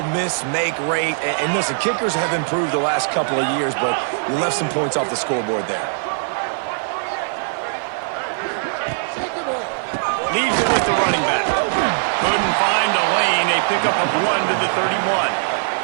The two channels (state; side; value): silent; left; digital silence